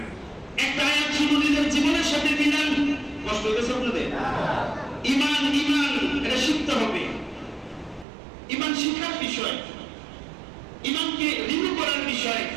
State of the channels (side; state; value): left; drops out; at 8.1 s